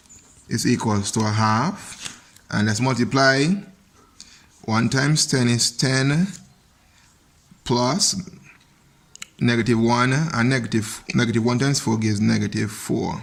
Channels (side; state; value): both; identical; correlation 1.00